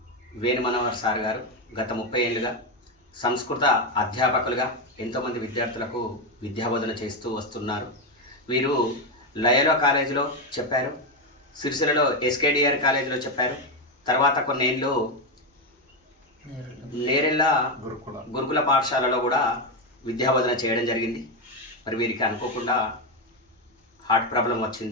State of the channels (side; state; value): both; normal; correlation 0.08